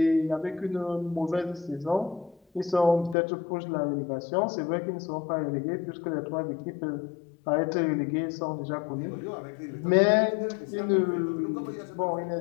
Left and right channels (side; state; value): right; drops out; at 3.2 s